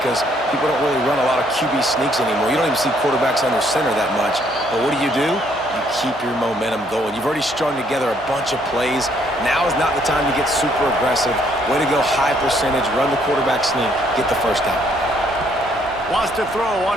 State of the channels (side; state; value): right; noise; hum, 19 dB below the sound